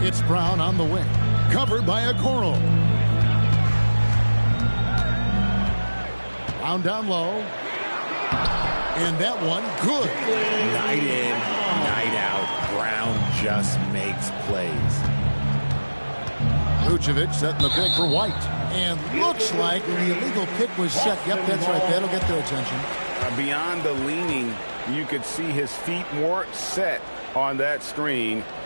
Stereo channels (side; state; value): both; inverted; correlation -1.00